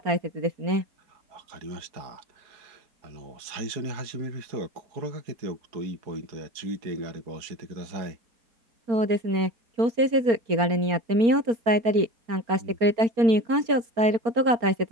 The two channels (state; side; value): late; left; 4.3 ms